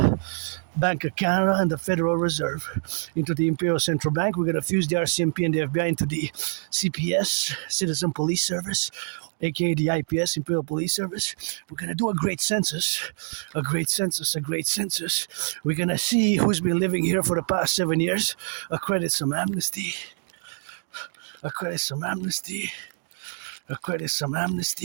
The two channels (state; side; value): silent; left; digital silence